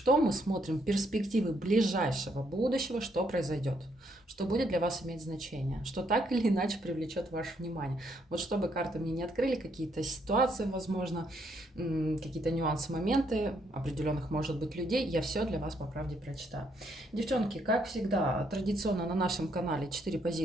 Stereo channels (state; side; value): normal; both; correlation 0.73